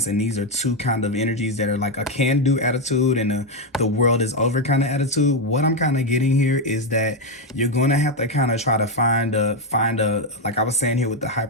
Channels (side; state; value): both; normal; correlation 0.05